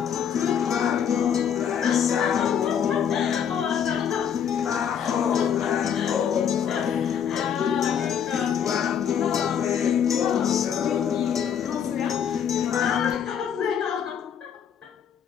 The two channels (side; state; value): right; quieter; 8.3 dB